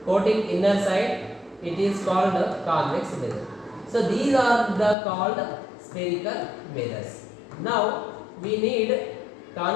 coating inner side, it is called convex mirror. So these are the called spherical mirrors. Now we need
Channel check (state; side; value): drops out; right; at 5.0 s